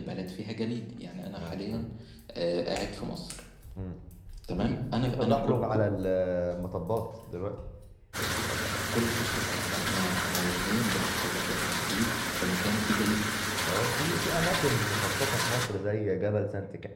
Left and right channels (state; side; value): identical; both; correlation 1.00